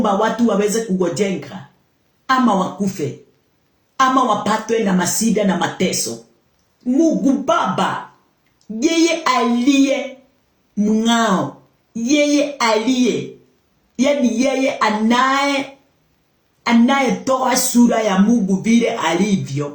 watu waweze kugojenga ama wakufe ama wapatwe na masida na mateso, Mungu Baba, yeye aliye mng'ao, yeye aliye, yani yeye anayetoa sura ya Mungu vile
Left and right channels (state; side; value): identical; both; correlation 1.00